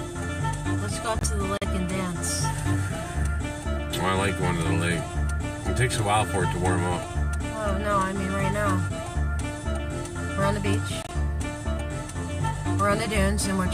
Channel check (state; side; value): identical; both; correlation 1.00